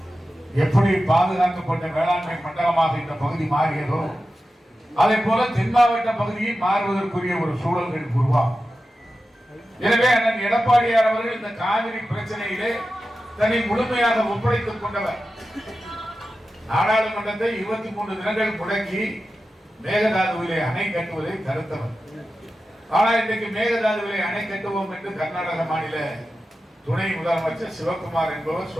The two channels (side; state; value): both; normal; correlation 0.93